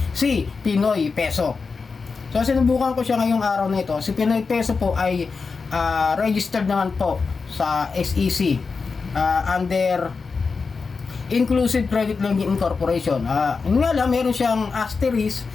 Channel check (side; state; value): right; quieter; 4.7 dB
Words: si Pinoy Peso. So sinubukan ko siya ngayong araw na ito. Si Pinoy Peso po ay registered naman po sa SEC under Inclusive Credit Lending Incorporation. Yun nga lang, meron siyang asterisk.